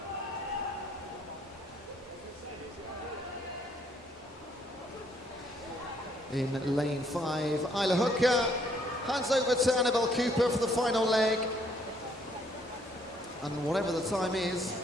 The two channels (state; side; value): normal; both; correlation 0.67